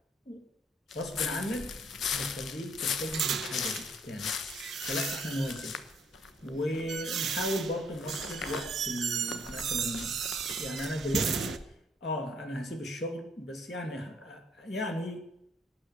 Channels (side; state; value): both; normal; correlation 0.65